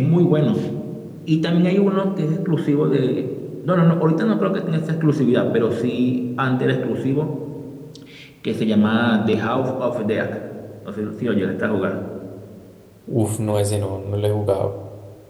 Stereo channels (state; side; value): identical; both; correlation 1.00